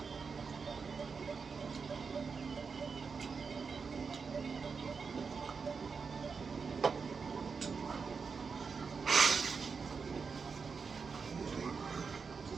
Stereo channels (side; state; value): left; quieter; 5.3 dB